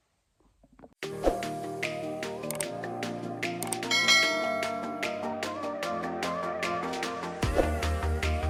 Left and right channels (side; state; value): both; identical; correlation 1.00